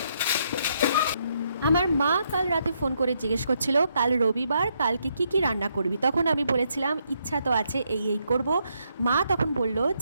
আমার মা কাল রাতে ফোন করে জিজ্ঞেস করছিল কাল রবিবার কালকে কি কি রান্না করবি তখন আমি বলেছিলাম ইচ্ছা তো আছে এই করব মা তখন বলল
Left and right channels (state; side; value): inverted; both; correlation -0.76